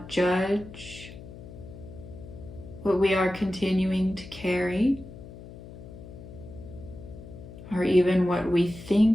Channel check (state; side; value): noise; left; hum, 15 dB below the sound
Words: judge what we are continuing to carry, or even what we